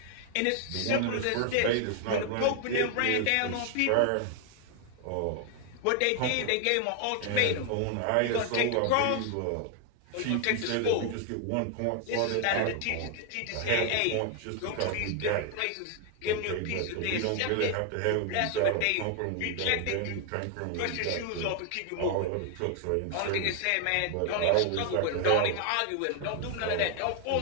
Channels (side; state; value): both; different; correlation 0.00